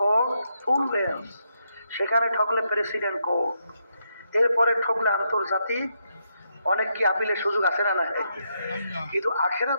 ফুল বেঞ্চ, সেখানে ঠকলে প্রেসিডেন্ট কোর্ট, এরপরে ঠকলে আন্তর্জাতিক অনেক কি আপিলের সুযোগ আছে না? নাই। কিন্তু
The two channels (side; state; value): both; inverted; correlation -0.80